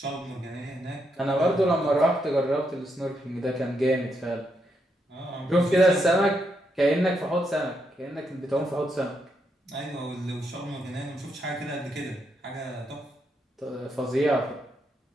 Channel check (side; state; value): both; normal; correlation 0.80